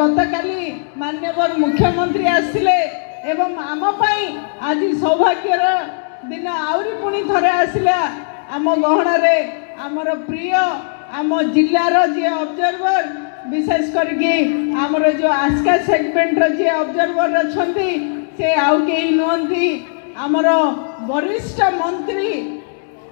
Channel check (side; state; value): right; silent; 68 dB below the other